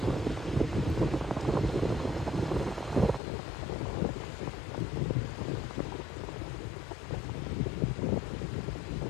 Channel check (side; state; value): right; drops out; at 3.2 s